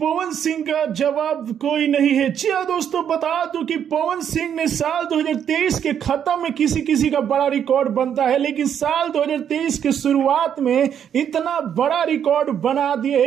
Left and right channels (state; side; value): quieter; left; 8.8 dB